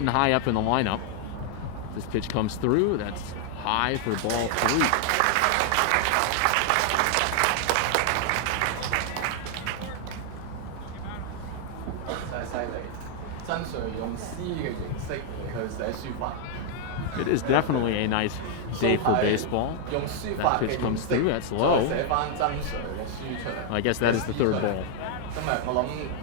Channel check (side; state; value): both; different; correlation 0.00